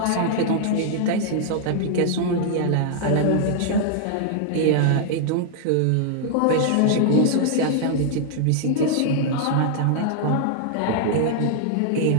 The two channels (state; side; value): different; both; correlation -0.01